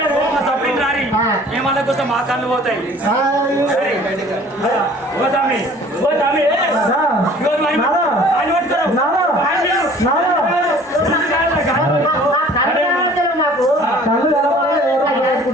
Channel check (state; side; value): normal; both; correlation 0.50